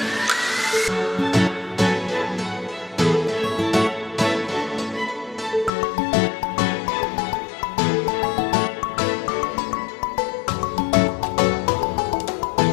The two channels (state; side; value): drops out; right; at 5.7 s